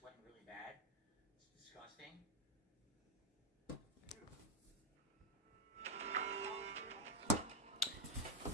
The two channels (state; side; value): normal; both; correlation -0.01